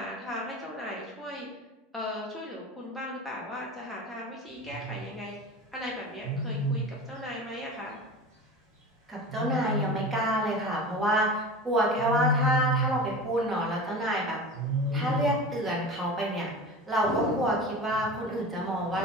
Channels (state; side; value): normal; both; correlation 0.33